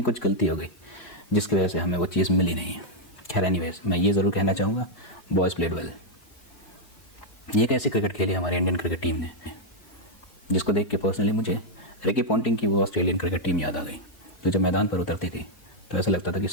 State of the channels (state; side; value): late; right; 4.0 ms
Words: कुछ गलती हो गई जिसकी वजह से हमें वो चीज़ मिली नहीं है। खैर एनीवेज, मैं ये ज़रूर कहना चाहूँगा, बॉयज़ प्लेड वेल। ये कैसे क्रिकेट खेली हमारी इंडियन क्रिकेट टीम ने, जिसको देख के पर्सनली मुझे रिकी पॉन्टिंग की वो ऑस्ट्रेलियन क्रिकेट टीम याद आ गई। तो जब मैदान पर उतरती थी तो ऐसा लगता था कि